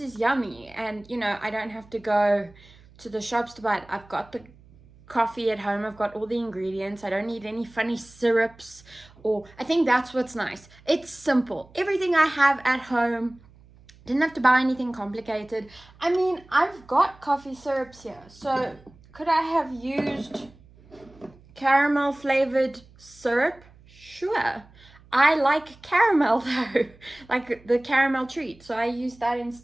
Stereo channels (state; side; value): noise; right; hum, 26 dB below the sound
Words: is yummy, and you know, I don't have to go to the shops to buy it. I've got the coffee at home, I've got all the ingredients. I don't need any funny syrups, or I think that's what's nice. It's simple. Everything I have at home. Didn't have to buy anything complicated. I mean, I've got coffee syrups here, so could I have used caramel flavored syrup? Sure. I like caramel though, like the caramel treat, so I use that